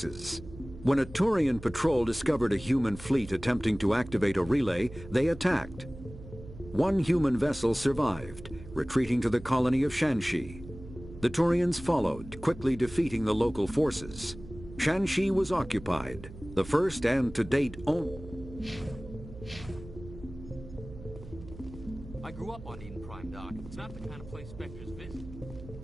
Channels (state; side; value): noise; right; hum, 15 dB below the sound